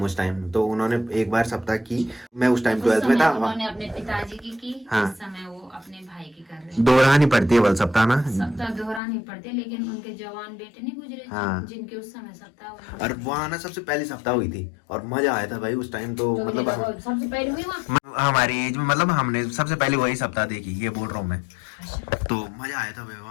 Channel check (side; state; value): right; drops out; at 9.0 s